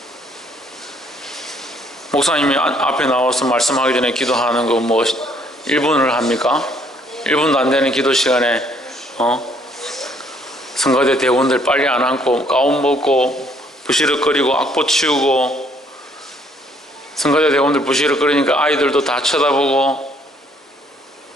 목사님이 앞에 나와서 말씀하기 전에 기도하는 거 뭐 1분을 합니까? 1분도 안 되는 기도 시간에 성가대 대원들 빨리 안 앉고 가운 벗고 부시럭거리고 악보 치우고, 성가대 대원들 부시럭거리니까 아이들도 다 쳐다보고,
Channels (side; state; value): both; normal; correlation 0.64